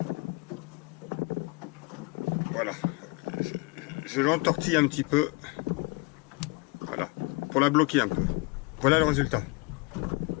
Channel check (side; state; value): right; quieter; 27.2 dB